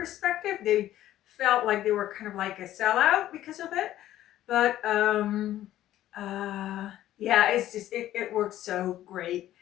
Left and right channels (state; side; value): quieter; right; 13.3 dB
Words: they felt like they were kind of like a sellout because of it. But yeah, it's just it works so great.